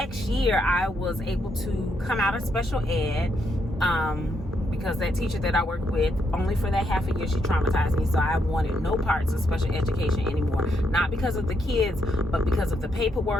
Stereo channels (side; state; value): both; normal; correlation 0.78